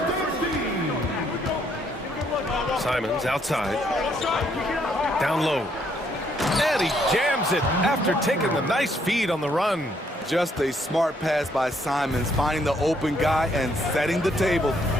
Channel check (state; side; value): normal; both; correlation 0.70